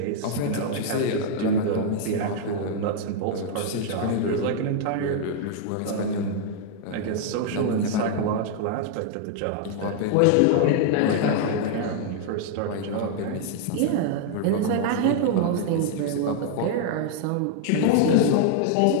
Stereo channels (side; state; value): both; different; correlation -0.01